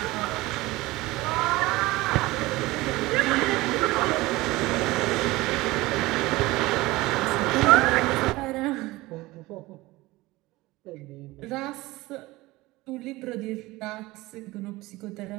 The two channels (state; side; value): quieter; left; 20.0 dB